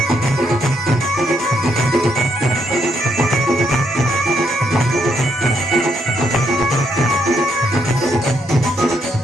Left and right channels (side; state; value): both; normal; correlation 0.75